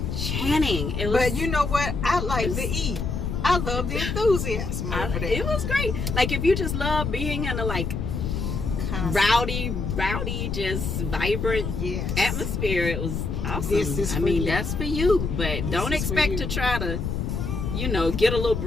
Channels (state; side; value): noise; left; rumble, 2 dB below the sound